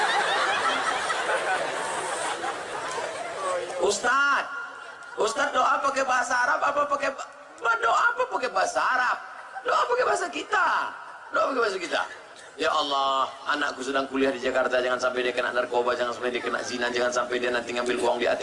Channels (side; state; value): both; identical; correlation 1.00